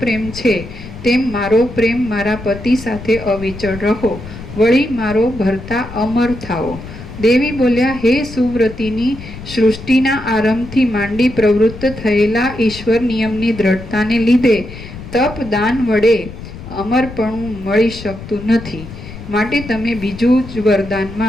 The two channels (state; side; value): noise; left; rumble, 13 dB below the sound